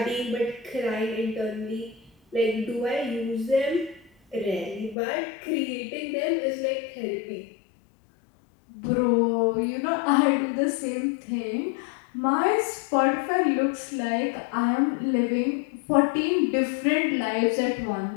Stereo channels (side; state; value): right; drops out; at 5.0 s